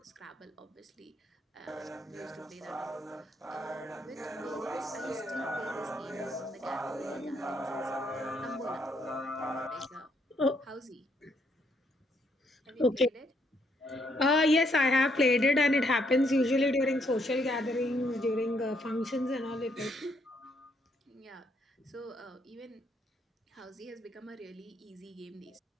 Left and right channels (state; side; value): normal; both; correlation 0.72